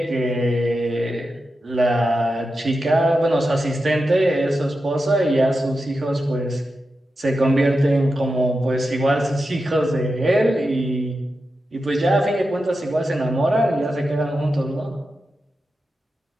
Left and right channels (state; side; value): normal; both; correlation 0.90